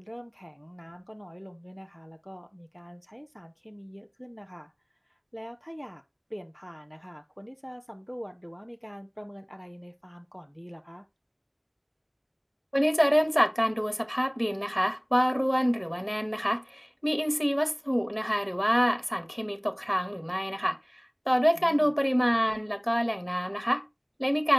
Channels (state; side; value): identical; both; correlation 1.00